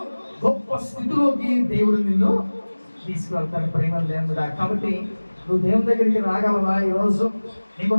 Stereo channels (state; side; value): inverted; both; correlation -1.00